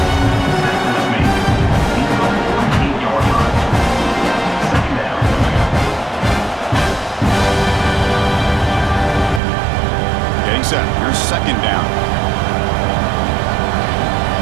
Set. Here's second down.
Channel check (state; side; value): drops out; left; at 9.4 s